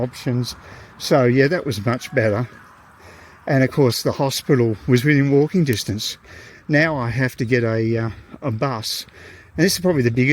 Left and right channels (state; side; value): identical; both; correlation 1.00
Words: So yeah, that was much better. And of course the hospital was within walking distance. Now I have to get a bus. And this is probably the